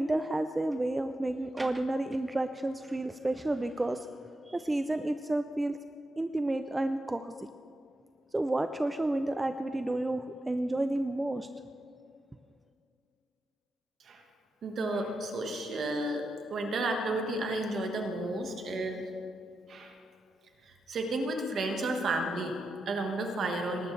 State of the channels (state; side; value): normal; both; correlation 0.87